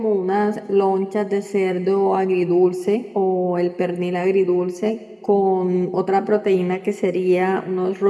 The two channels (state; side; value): identical; both; correlation 1.00